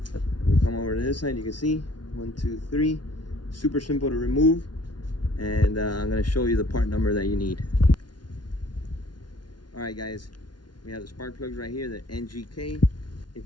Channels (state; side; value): late; right; 0.70 ms